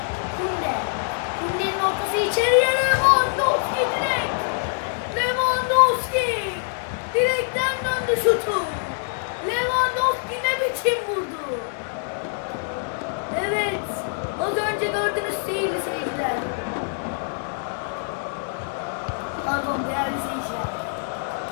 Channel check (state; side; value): silent; right; 62 dB below the other